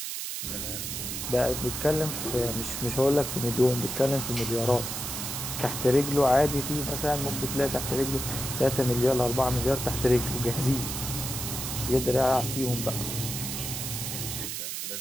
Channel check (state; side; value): noise; right; hiss, 4 dB below the sound